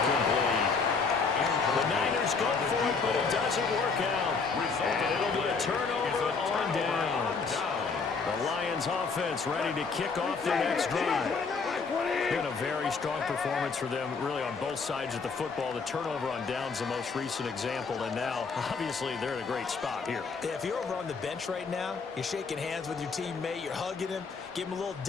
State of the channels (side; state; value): right; quieter; 4.9 dB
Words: The Niners go for it, but it doesn't work out. And it'll be a turnover on downs. The Lions offense ready to kick off their next drive. Been a very strong performance for them, really, on both sides of the football. The turnover on downs, the most recent example, and now, obviously, they're in a great spot here. Yeah, if you're over on the bench right now, you're shaking hands with your teammate, you're hugging him, give him a little